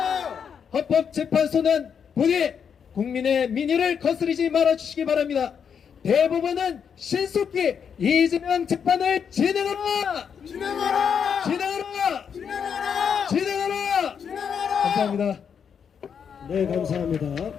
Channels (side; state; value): right; quieter; 7.2 dB